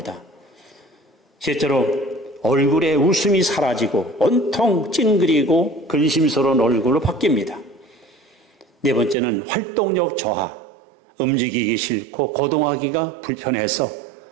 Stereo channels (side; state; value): left; drops out; at 9.2 s